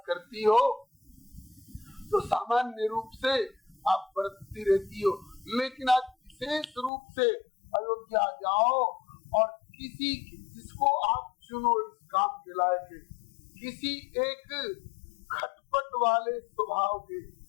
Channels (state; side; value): drops out; right; at 6.9 s